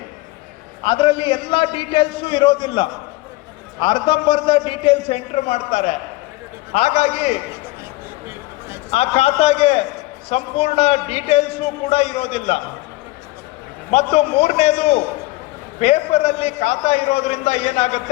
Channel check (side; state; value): right; quieter; 20.3 dB